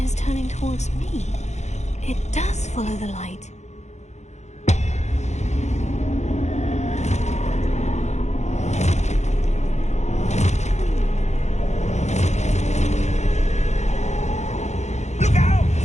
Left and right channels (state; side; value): late; right; 0.33 ms